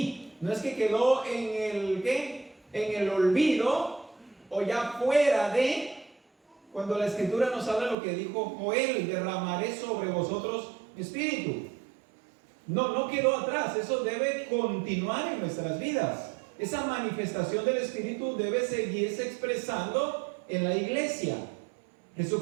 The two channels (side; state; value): left; drops out; at 8.0 s